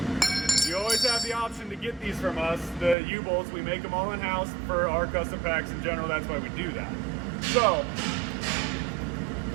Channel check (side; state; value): left; drops out; at 3.0 s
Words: You always have the option to get these from us. The U-bolts, we make them all in-house for our custom packs in general. That's why we do that. So